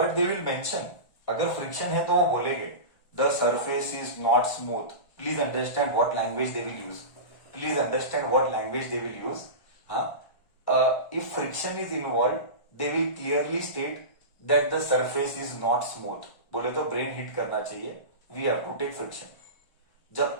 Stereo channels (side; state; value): right; late; 1.4 ms